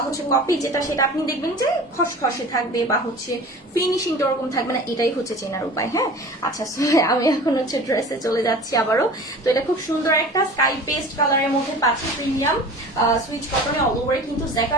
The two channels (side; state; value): both; normal; correlation 0.39